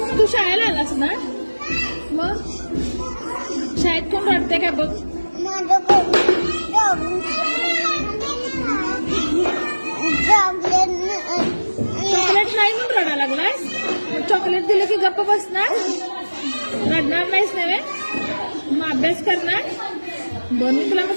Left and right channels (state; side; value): inverted; both; correlation -1.00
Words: तू शाळेला आलास ना? मग शाळेत कोण रडते का बघ? चॉकलेट नाही म्हणून रडायला लागलास? चॉकलेट दिलं की गप्प बसणार? रडणार नाहीस नव्हे? मग अभ्यास करणार? बरं मी तुला